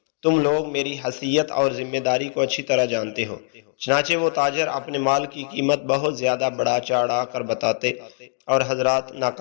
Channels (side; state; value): right; silent; digital silence